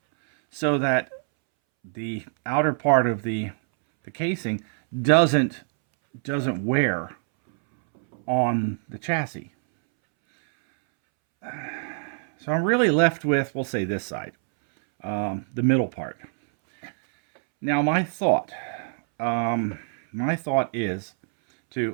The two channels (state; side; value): silent; left; 62 dB below the other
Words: so that the outer part of the casing doesn't wear on the chassis. So I'm really left with, we'll say this side, the middle part. Now my thought is